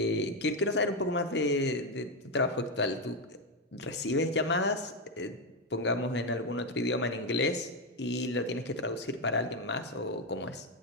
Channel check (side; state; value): both; normal; correlation 0.07